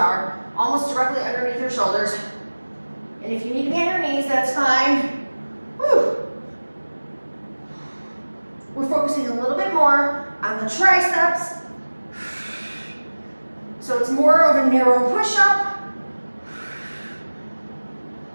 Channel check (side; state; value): both; inverted; correlation -1.00